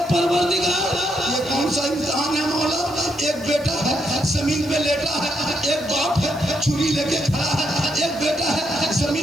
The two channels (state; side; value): noise; right; hiss, 23 dB below the sound